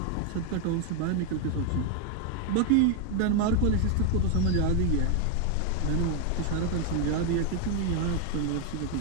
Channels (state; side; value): different; both; correlation 0.01